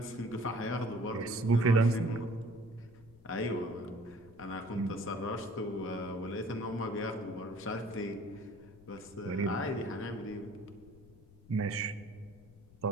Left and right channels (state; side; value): noise; left; rumble, 23 dB below the sound